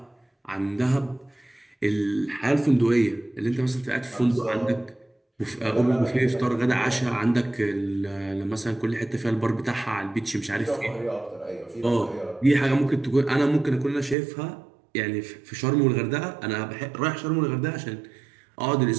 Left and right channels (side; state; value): left; drops out; at 14.2 s